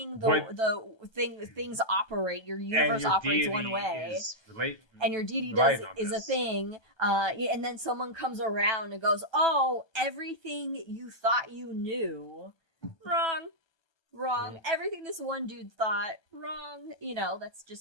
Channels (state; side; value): late; right; 1.2 ms